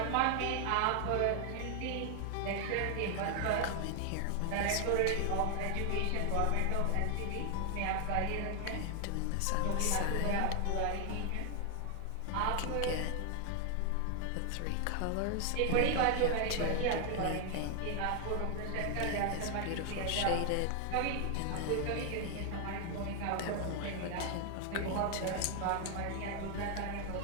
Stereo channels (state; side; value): different; both; correlation 0.00